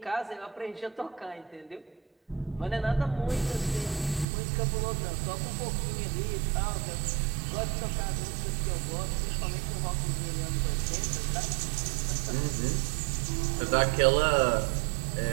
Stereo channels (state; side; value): drops out; left; at 4.2 s